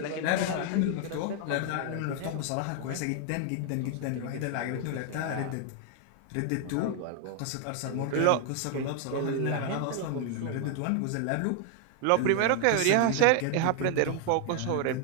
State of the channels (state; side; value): different; both; correlation 0.00